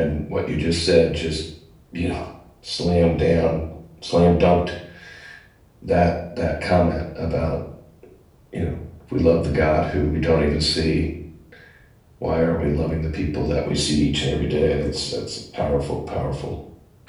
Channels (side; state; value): both; identical; correlation 1.00